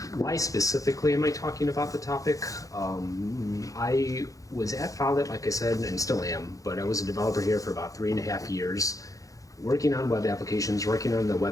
Why specifically am I talking about the topic? I was at Follett, like I said, and still am, but I was a developer here for about 3.5 years, working on web applications, working on the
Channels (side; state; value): right; late; 0.16 ms